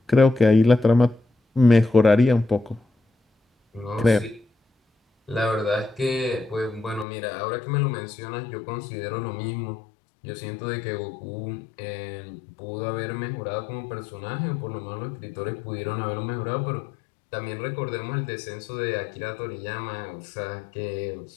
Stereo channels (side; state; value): right; drops out; at 7.1 s